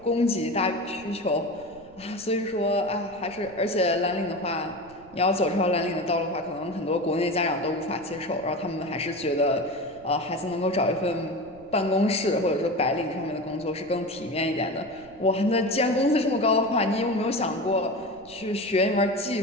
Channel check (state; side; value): noise; right; rumble, 25 dB below the sound